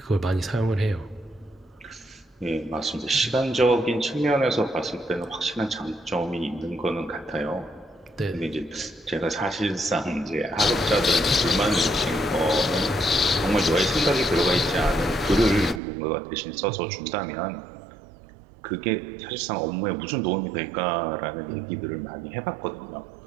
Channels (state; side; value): drops out; left; at 15.8 s